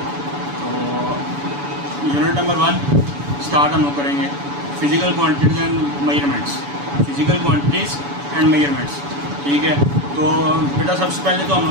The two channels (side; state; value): left; late; 7.0 ms